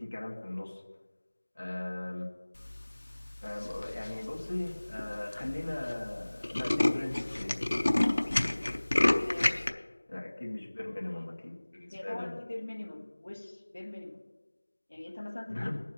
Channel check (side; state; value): both; inverted; correlation -1.00